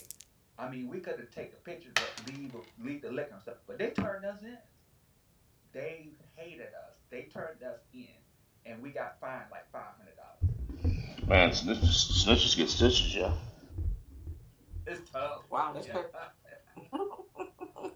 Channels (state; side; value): identical; both; correlation 1.00